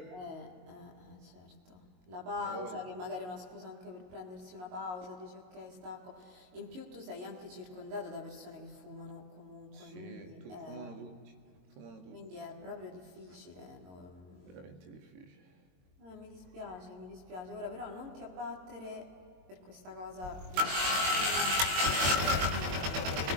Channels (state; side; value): late; left; 22 ms